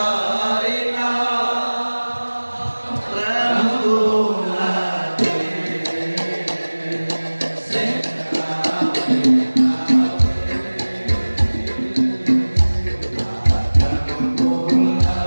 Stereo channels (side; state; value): both; inverted; correlation -1.00